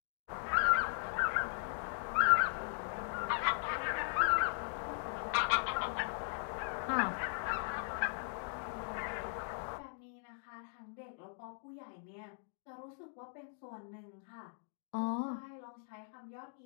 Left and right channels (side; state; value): right; silent; digital silence